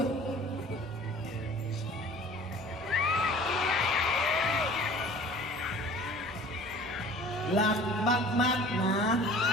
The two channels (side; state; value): both; normal; correlation 0.46